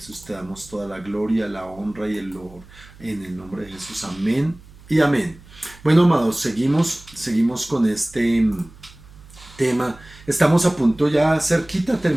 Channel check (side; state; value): right; noise; hum, 22 dB below the sound